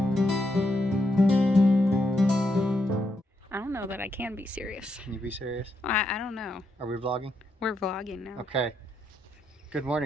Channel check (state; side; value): normal; both; correlation 0.80